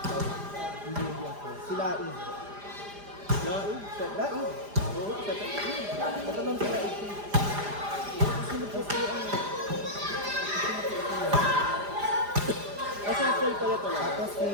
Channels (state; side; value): late; left; 4.9 ms